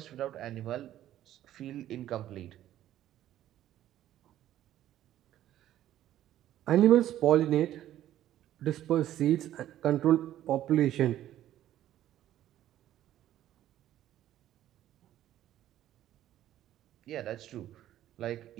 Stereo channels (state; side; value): quieter; left; 12.6 dB